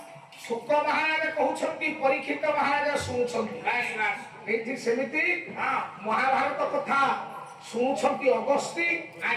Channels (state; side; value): identical; both; correlation 1.00